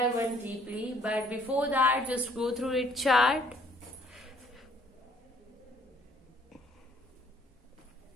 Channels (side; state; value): both; normal; correlation 0.62